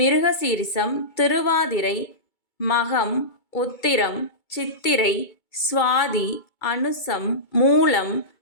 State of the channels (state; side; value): late; right; 2.3 ms